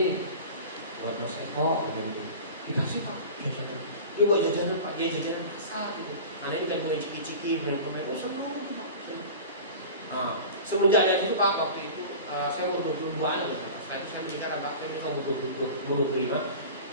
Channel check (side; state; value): both; inverted; correlation -0.35